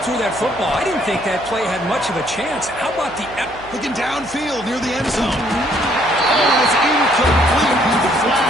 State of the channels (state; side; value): noise; right; hum, 20 dB below the sound